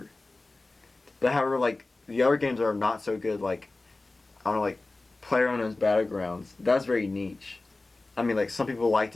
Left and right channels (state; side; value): quieter; right; 3.2 dB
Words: But however, like the other games are not so good. Like I don't know, like PlayerUnknown's Battlegrounds. That's very niche. I mean, like some people liked